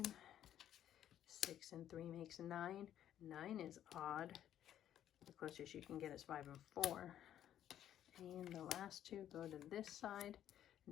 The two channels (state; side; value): quieter; right; 11.0 dB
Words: 6 and 3 makes 9. 9 is odd. The closest you can get is 5 and 4. And the last two go to this side.